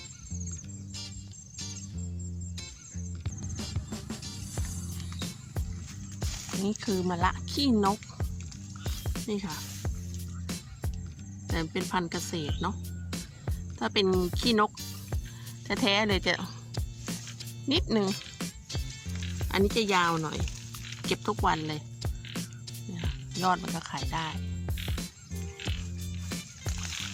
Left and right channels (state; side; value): identical; both; correlation 1.00